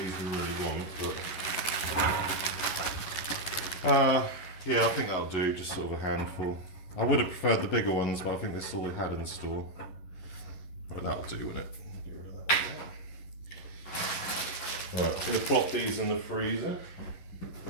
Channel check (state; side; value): late; right; 11 ms